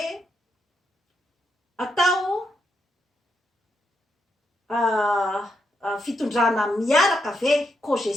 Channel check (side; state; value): both; normal; correlation 0.80